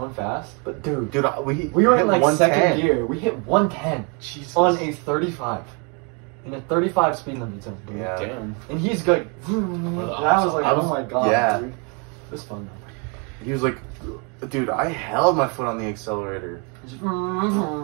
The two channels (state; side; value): quieter; left; 34.7 dB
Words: fast. But dude, Dude, we were hit in like 110. second gear. We hit 110 Jesus. on a 35. In a 35 speed limit zone, dude. Yeah. Damn. And he's like, and I was like, oh my god, Yeah. dude. It was fun though. He was like, dude, I held my foot on the accelerator. Just,